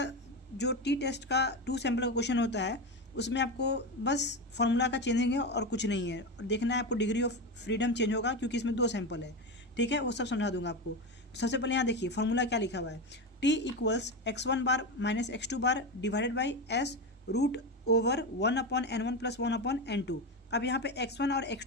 जो टी टेस्ट का टू सैंपल का क्वेश्चन होता है, उसमें आपको बस फॉर्मूला का चेंजिंग है और कुछ नहीं है। और देखना है आपको डिग्री ऑफ फ्रीडम चेंज होगा, क्योंकि इसमें दो सैंपल है। ठीक है, वो सब समझा दूंगा आपको। तो सबसे पहले यहाँ देखिए फॉर्मूला क्या लिखा हुआ है। T equals x1 bar minus x2 bar divided by S root over 1/n1 plus 1/n2। अब यहाँ पे x1 और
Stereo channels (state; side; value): normal; both; correlation 0.18